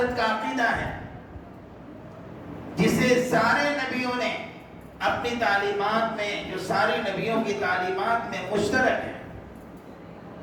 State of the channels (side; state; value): both; identical; correlation 1.00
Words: کا عقیدہ ہے جسے سارے نبیوں نے اپنی تعلیمات میں، جو سارے نبیوں کی تعلیمات میں مشترک ہے.